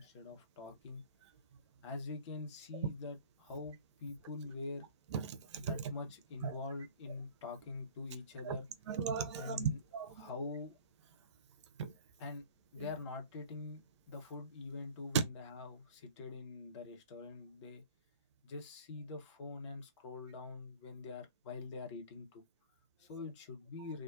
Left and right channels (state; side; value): inverted; both; correlation -0.47